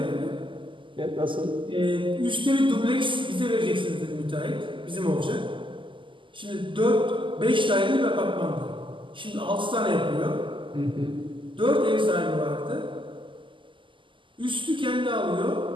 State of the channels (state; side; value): late; left; 0.25 ms